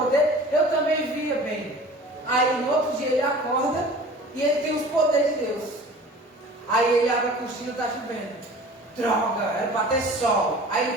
eu também via bem. Aí no outro dia ele acorda e ele tem os poderes de Deus. Aí ele abre a cortina e está chovendo. Droga, era para ter sol. Aí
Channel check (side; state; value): both; normal; correlation 0.43